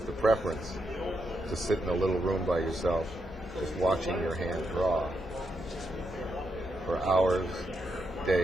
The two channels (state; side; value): normal; both; correlation 0.81